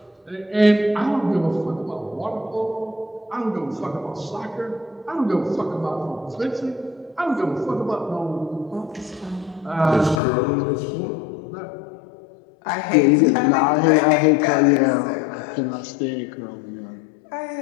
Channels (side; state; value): right; drops out; at 10.2 s